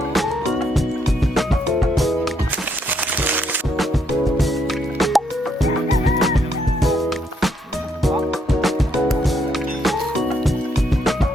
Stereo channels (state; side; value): normal; both; correlation 0.74